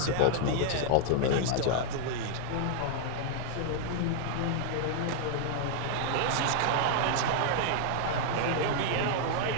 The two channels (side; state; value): both; different; correlation 0.00